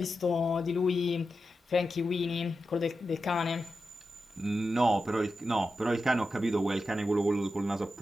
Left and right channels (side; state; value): both; normal; correlation 0.90